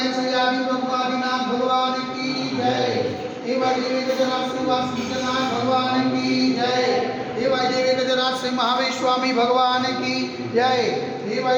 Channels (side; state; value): both; identical; correlation 1.00